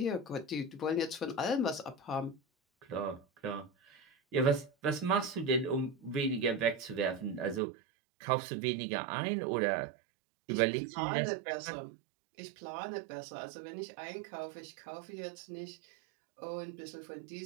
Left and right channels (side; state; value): left; drops out; at 7.6 s